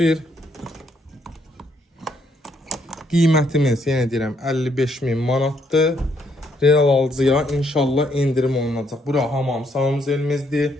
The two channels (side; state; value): both; normal; correlation 0.72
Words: Qiymətimiz, yenə deyirəm, 55.000 manatdır. Real alıcıya inşallah indirim olunacaq. Bura hamam sağımız elimizdir.